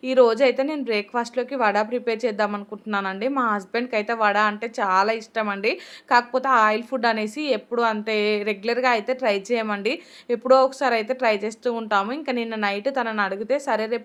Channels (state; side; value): identical; both; correlation 1.00